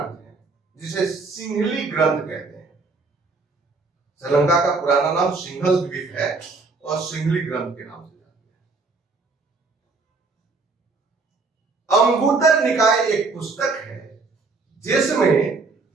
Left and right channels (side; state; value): left; quieter; 4.0 dB